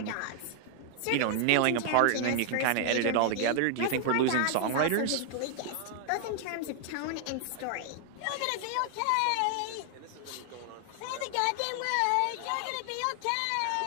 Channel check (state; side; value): different; both; correlation 0.00